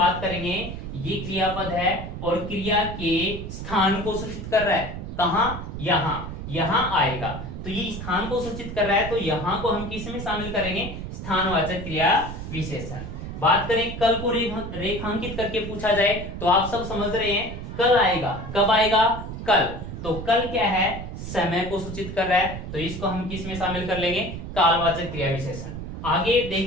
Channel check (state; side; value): noise; right; rumble, 8 dB below the sound